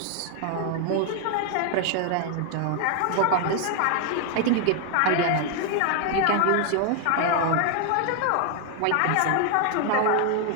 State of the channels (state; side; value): different; both; correlation 0.00